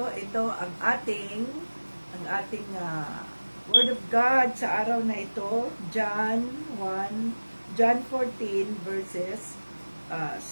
ang ating Word of God sa araw na ito, John 14 verses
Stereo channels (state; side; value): inverted; both; correlation -1.00